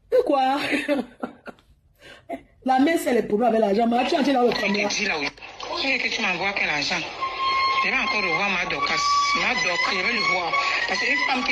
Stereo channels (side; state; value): both; identical; correlation 1.00